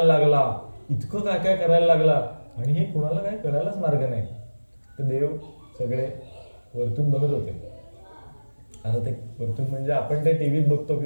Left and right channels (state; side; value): inverted; both; correlation -1.00